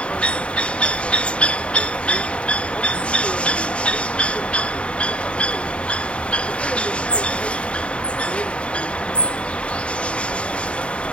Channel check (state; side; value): late; right; 0.059 ms